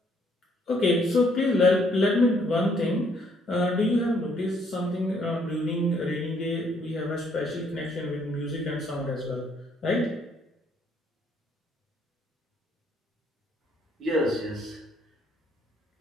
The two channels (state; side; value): normal; both; correlation 0.67